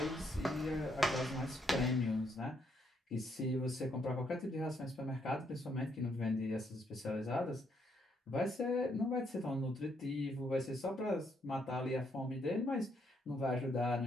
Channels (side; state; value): both; normal; correlation 0.73